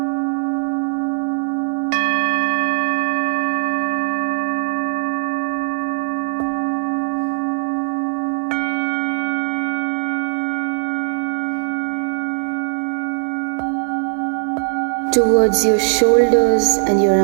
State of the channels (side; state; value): left; silent; digital silence